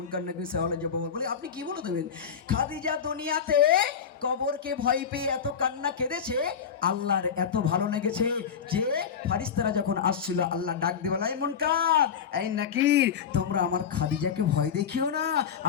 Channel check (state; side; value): quieter; right; 7.3 dB